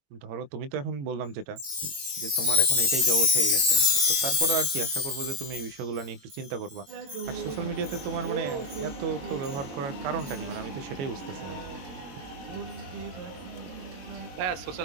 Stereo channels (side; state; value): left; late; 21 ms